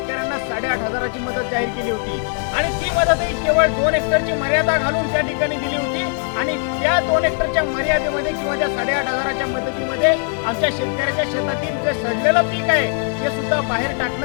8,500ची मदत जाहीर केली होती आणि ती मदतही केवळ 2 हेक्टरची मर्यादा घालून त्या ठिकाणी दिली होती आणि त्या 2 हेक्टरच्या मर्यादेमध्ये किंवा त्या 8,500च्या मदतीमध्ये आमच्या शेतकऱ्याच्या शेतातील जे सडलेलं पीक आहे ते सुद्धा बाहेर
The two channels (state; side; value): quieter; right; 39.5 dB